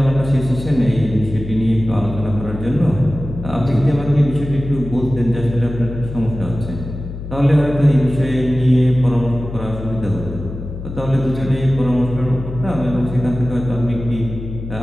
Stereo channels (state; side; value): noise; left; hum, 9 dB below the sound